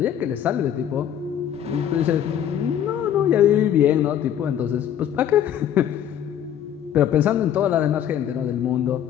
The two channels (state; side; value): quieter; right; 9.9 dB